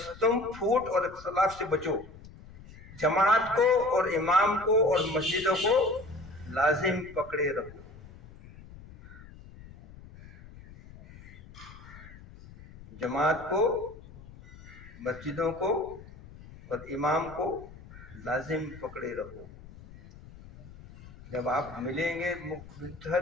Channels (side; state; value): left; noise; rumble, 18 dB below the sound